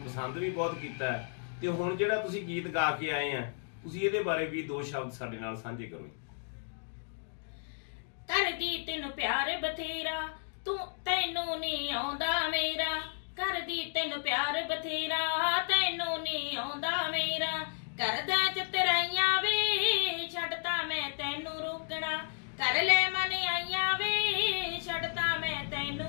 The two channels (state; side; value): silent; right; digital silence